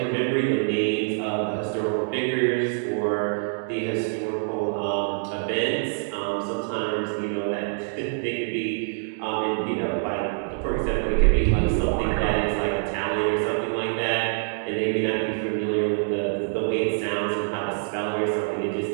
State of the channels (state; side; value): silent; left; digital silence